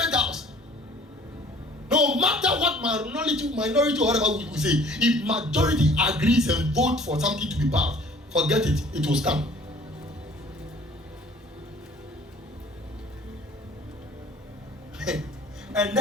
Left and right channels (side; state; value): both; normal; correlation 0.52